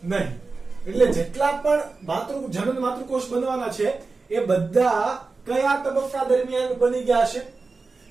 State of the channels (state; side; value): quieter; left; 4.1 dB